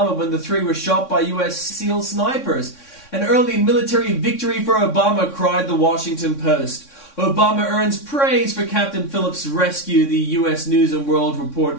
when the 3 were shot by U.S. SEAL snipers. An early military victory for Obama, cried the Washington Post. Obama earns praise for Captain Phillips' rescue, the U.S. News and World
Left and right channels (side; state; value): right; late; 3.6 ms